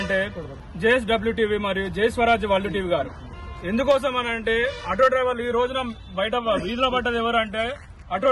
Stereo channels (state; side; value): identical; both; correlation 1.00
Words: JSWTV మరియు జై స్వరాజ్ వరల్డ్ టీవీ గారు. ఎందుకోసం అనంటే ఆటో డ్రైవర్లు ఈ రోజున బయట వీధిలో పడ్డది ఎవరంటే ఆటో